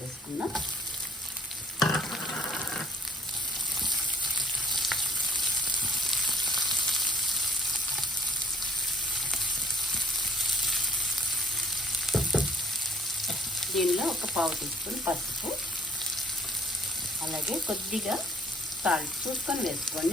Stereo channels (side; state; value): both; normal; correlation 0.57